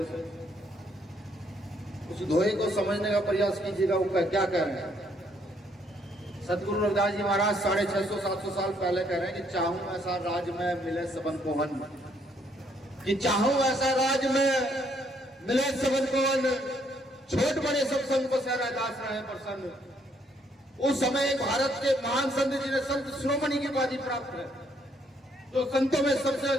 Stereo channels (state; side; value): normal; both; correlation 0.69